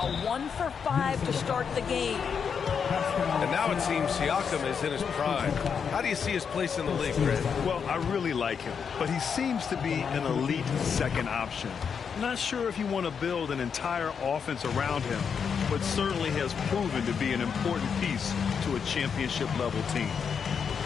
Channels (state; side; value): quieter; right; 6.6 dB